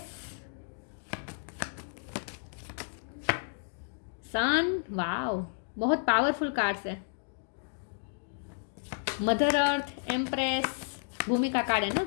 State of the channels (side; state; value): right; silent; digital silence